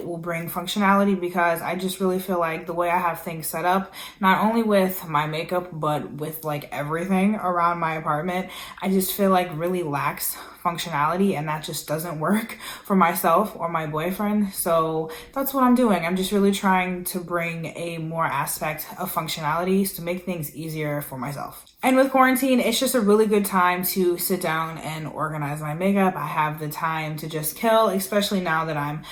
will bring functionality, because I just really feel like the way I have things set up, not only with my makeup, but with like everything around my apartment, I just feel like really lacks functionality, and that just doesn't work for myself or my boyfriend. So that's what I'm doing. I'm just really trying to bring a more aspect of functionality to make things easier for myself. And with quarantine, it's just a really good time to sit down and organize my makeup. I have the time to just kill, especially now that I'm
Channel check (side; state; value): both; identical; correlation 1.00